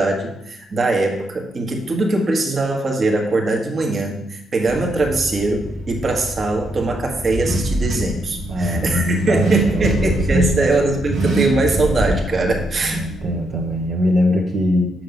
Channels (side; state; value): both; normal; correlation 0.79